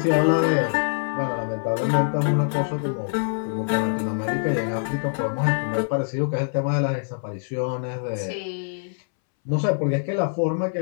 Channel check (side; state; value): right; silent; 62 dB below the other